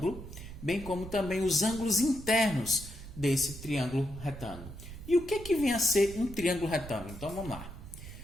bem como também os ângulos internos desse triângulo retângulo. E o que vem a ser um triângulo retângulo? Então vamos lá.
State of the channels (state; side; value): noise; right; rumble, 12 dB below the sound